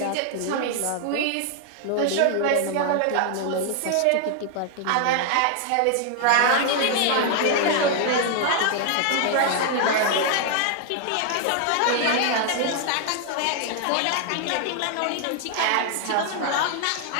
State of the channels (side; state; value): both; different; correlation 0.00